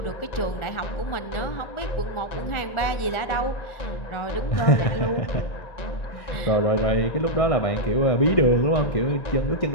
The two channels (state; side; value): late; right; 1.4 ms